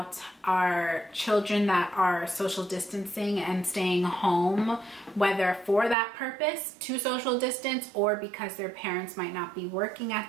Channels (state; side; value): drops out; left; at 6.0 s